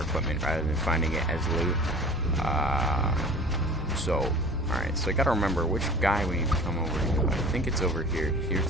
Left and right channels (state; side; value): normal; both; correlation 0.42